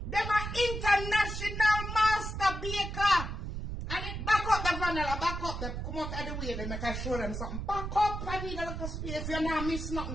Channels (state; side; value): noise; right; rumble, 5 dB below the sound